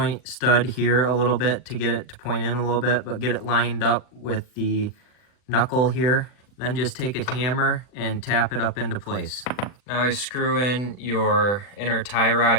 stud here a little bit to get it to point in a little bit, but get it lined up with the knuckle here. Then just take a hammer and tap it up into place. Now you screw in your inner tie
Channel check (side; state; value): right; late; 40 ms